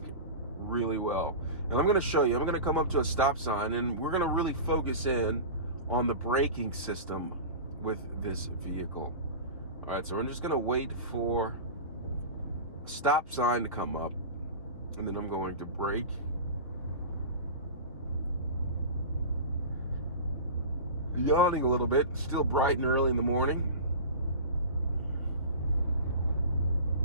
really well. And I'm going to show you, I'm going to come up to a stop sign and we're going to really focus in on the braking system with this vehicle. All right, so I'm just going to wait for a stop sign to come up, and then I'm going to brake. Yawning a little bit, still bright and early in the morning.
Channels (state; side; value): inverted; both; correlation -0.31